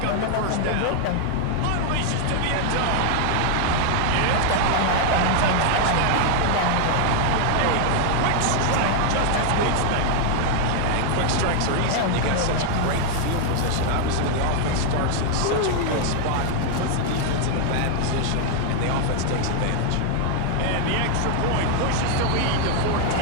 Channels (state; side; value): different; both; correlation 0.00